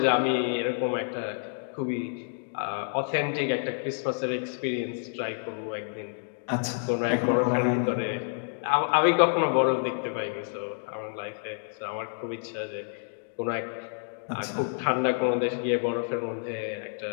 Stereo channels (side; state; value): right; silent; digital silence